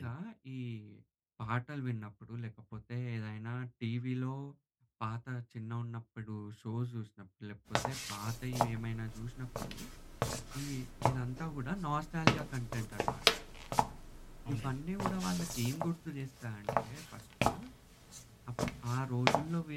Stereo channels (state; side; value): identical; both; correlation 1.00